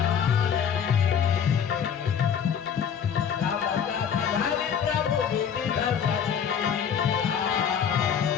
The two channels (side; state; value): right; quieter; 7.8 dB